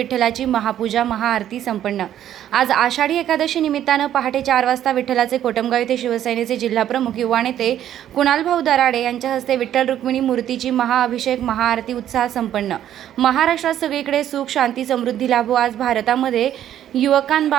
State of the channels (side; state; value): left; quieter; 11.1 dB